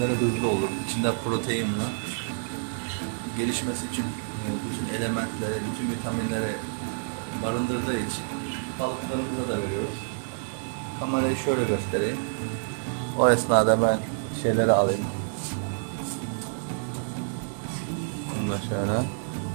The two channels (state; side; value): silent; left; 59 dB below the other